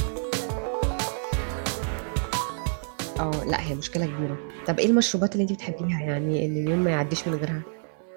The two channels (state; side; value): silent; left; digital silence